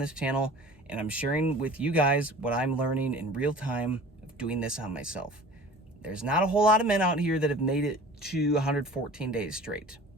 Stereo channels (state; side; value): normal; both; correlation 0.43